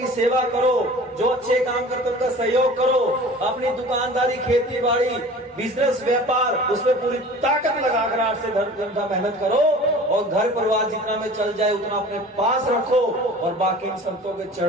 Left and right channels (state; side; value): normal; both; correlation 0.42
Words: सेवा करो, जो अच्छे काम करते उनका सहयोग करो, अपनी दुकानदारी, खेती बाड़ी, बिजनेस, व्यापार, उसमें पूरी ताकत लगाकर 8 से 10 घंटा मेहनत करो और घर परिवार जितना में चल जाए उतना अपने पास रखो और बाकी इन संतों के